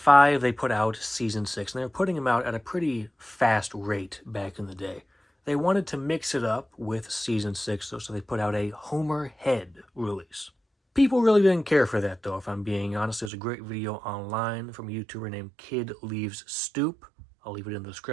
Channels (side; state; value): left; drops out; at 13.3 s